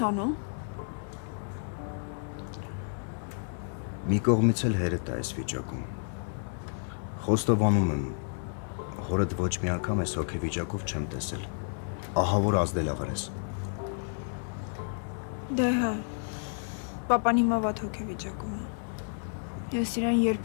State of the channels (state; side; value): silent; right; 57 dB below the other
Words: անում։ Մի կողմից էլ հերետ է այս վիճակում։ Խոստովանում եմ, հորդ ոչ մի անգամ այս հոգեվիճակով չեմ տեսել։ Ահա որ ազդելավար ես։ Դե հա, պապան հիմա վատ հոգեվիճակում է։ Ես իրան